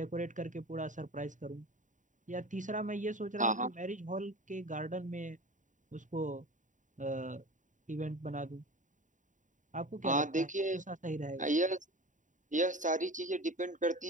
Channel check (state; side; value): late; left; 0.37 ms